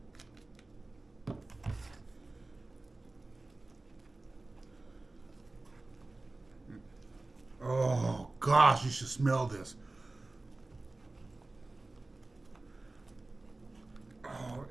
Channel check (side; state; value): left; quieter; 3.1 dB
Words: Oh gosh, you should smell this. Oh,